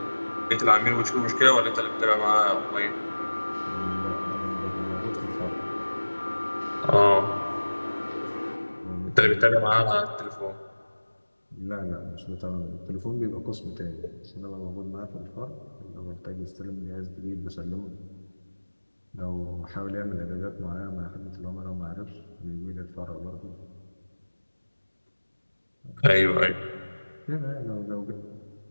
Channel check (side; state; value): both; inverted; correlation -1.00